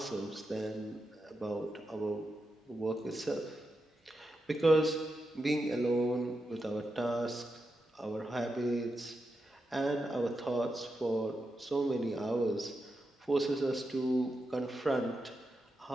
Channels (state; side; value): normal; both; correlation 0.87